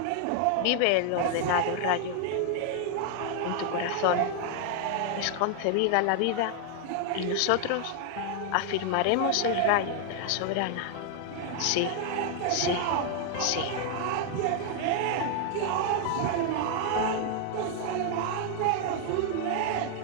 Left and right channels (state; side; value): different; both; correlation 0.00